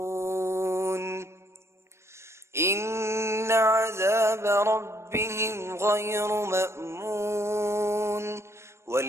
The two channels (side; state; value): left; late; 0.13 ms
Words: إن عذاب ربهم غير مأمون